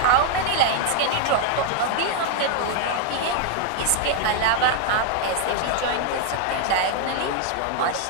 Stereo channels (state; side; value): different; both; correlation 0.00